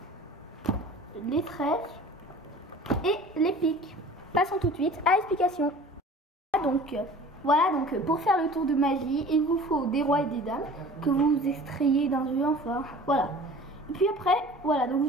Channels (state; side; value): normal; both; correlation 0.43